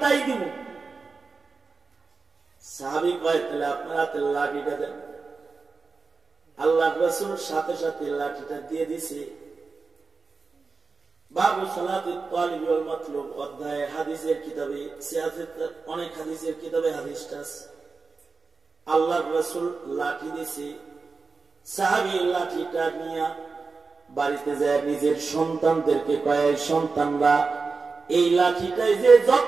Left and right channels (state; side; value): quieter; left; 4.4 dB